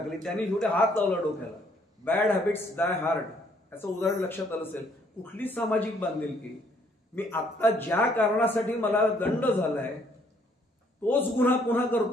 त्यांनी शेवटी हात लावला डोक्याला. बॅड हॅबिट्स डाय हार्ड, असं उदाहरण लक्षात आलं असेल. कुठली सामाजिक बांधिलकी? मी आता ज्या कारणासाठी मला दंड झालाय तोच गुन्हा पुन्हा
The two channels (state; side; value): normal; both; correlation 0.65